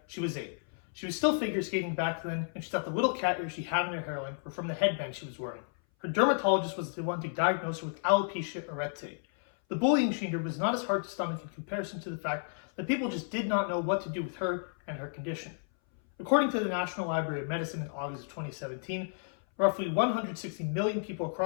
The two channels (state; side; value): silent; right; 56 dB below the other